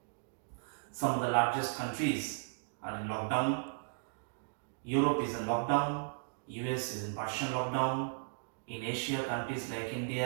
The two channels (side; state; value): left; silent; digital silence